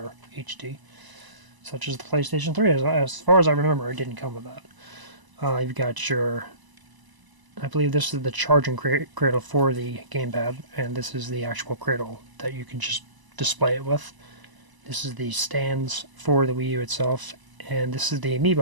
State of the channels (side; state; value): left; late; 1.0 ms